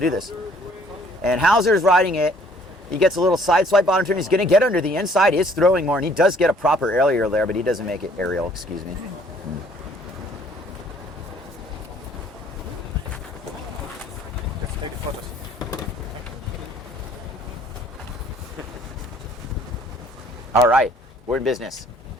this. And Hauser's riding it. He gets a little side swipe bottom turn. He's going to get under the inside. He's throwing more, and he does get a proper aerial there, but he doesn't make it aerial, excuse me. All right, we're in business.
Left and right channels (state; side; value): normal; both; correlation 0.59